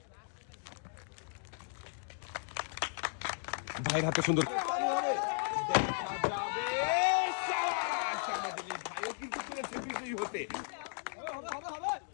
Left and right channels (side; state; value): right; silent; digital silence